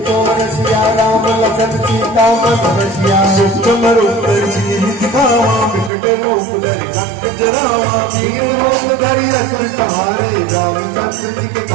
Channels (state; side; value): drops out; left; at 5.9 s